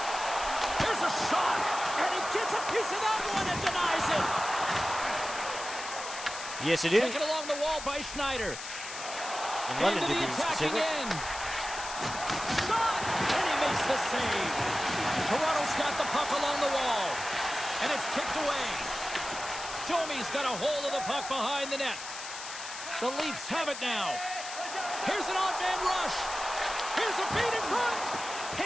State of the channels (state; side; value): noise; left; hiss, 9 dB below the sound